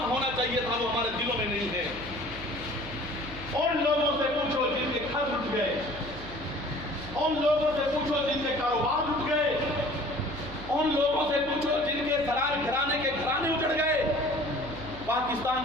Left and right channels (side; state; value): right; noise; hum, 14 dB below the sound